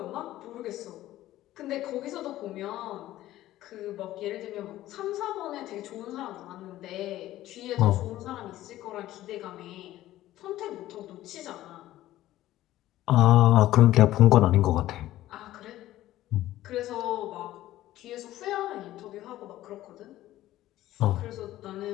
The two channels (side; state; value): right; quieter; 14.7 dB